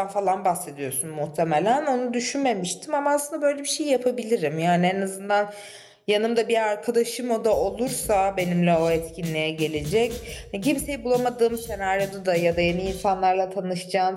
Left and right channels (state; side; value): identical; both; correlation 1.00